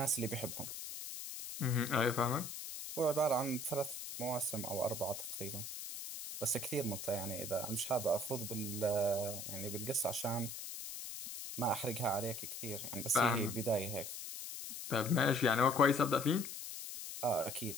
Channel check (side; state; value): left; noise; hiss, 8 dB below the sound